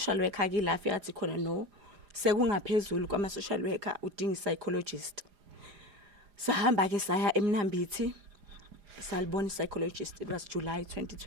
worker akilafi athi khona no sekungaphezulu kwama social worker udinga psychologist. Sahamba ke saya eMnambithi salibona psychologist, it was July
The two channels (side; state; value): left; late; 4.9 ms